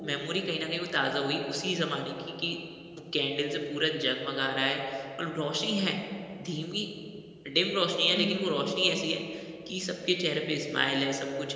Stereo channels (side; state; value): both; identical; correlation 1.00